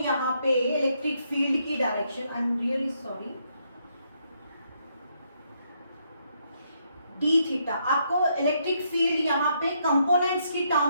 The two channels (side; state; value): both; inverted; correlation -0.75